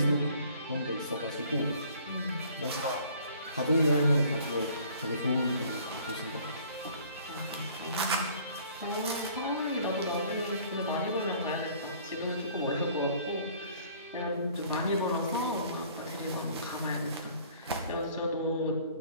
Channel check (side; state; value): both; inverted; correlation -0.54